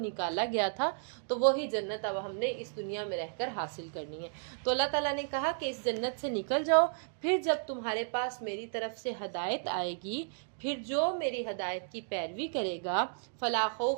گیا تھا، تو وہی جنت اب ہم نے اس دنیا میں رہ کر حاصل کرنی ہے۔ تو اللہ تعالیٰ نے کہا کہ اس جنت سے نکل جاؤ، پھر جب تمہارے پاس میری طرف سے ہدایت آئے گی، پھر جو میری ہدایت کی پیروی کرے گا، فلا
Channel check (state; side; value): silent; left; digital silence